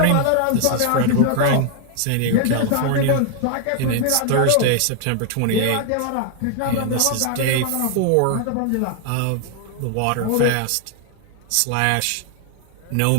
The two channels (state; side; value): different; both; correlation 0.00